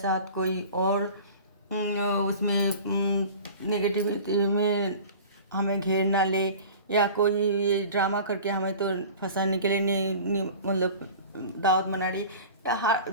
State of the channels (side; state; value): both; inverted; correlation -0.40